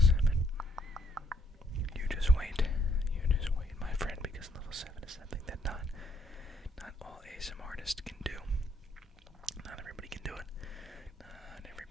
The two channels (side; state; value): both; normal; correlation 0.69